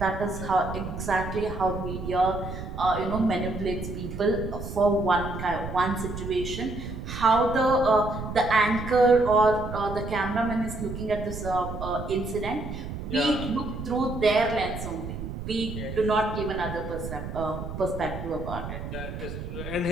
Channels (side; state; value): right; noise; rumble, 7 dB below the sound